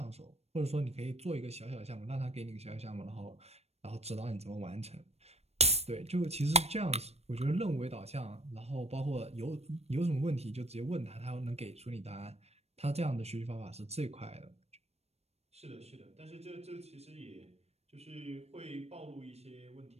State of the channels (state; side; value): late; left; 0.31 ms